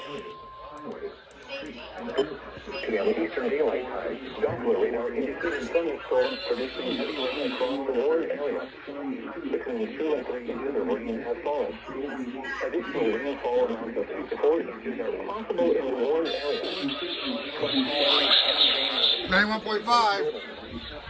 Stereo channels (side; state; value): both; identical; correlation 1.00